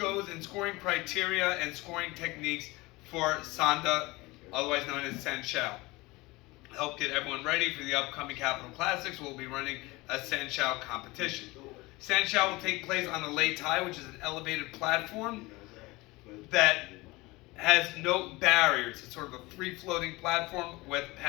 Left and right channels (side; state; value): right; quieter; 22.1 dB